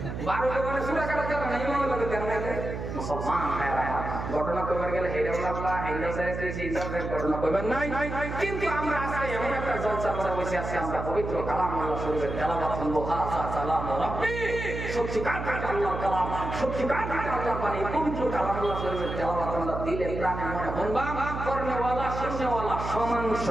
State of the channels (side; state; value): right; noise; hum, 6 dB below the sound